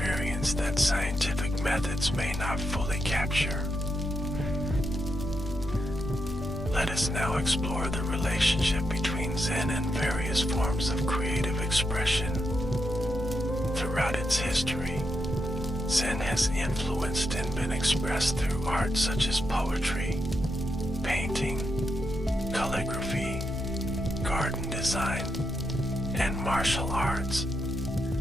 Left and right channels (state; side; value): normal; both; correlation 0.83